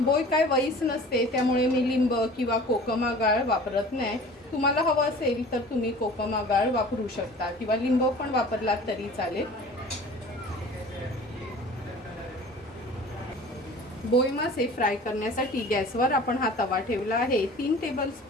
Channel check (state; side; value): normal; both; correlation 0.44